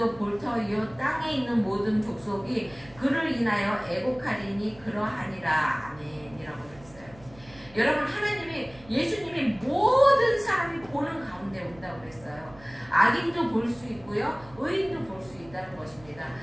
볼 터이요 땅에 있는 모든 족속이 그를 인하여 애곡하리니 그러하니라. 아멘이라고 그랬어요. 여러분 예수님이 모든 사람이 보는 가운데 온다고 그랬어요. 악인도 볼 수 있고요. 의인도 볼 수 있다는 것입니다.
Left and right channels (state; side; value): noise; right; hum, 23 dB below the sound